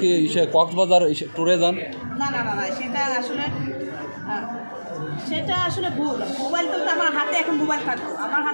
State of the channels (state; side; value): inverted; both; correlation -1.00